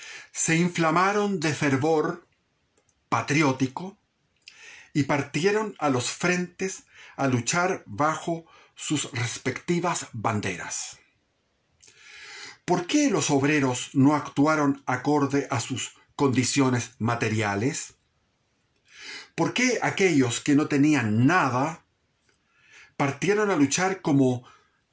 se inflamaron de fervor patriótico y partieron a los frentes a luchar bajo sus respectivas banderas. ¿Por qué los obreros no actuaron acorde a sus condiciones materiales? ¿Por qué aquellos que no tenían nada partieron a luchar como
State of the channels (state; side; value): identical; both; correlation 1.00